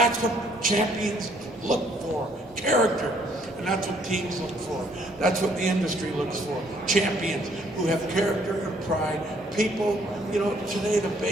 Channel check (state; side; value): normal; both; correlation 0.65